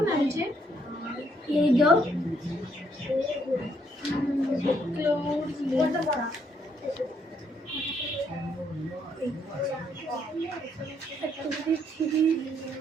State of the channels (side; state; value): both; normal; correlation 0.72